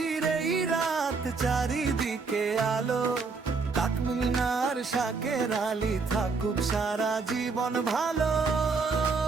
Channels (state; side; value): quieter; left; 4.5 dB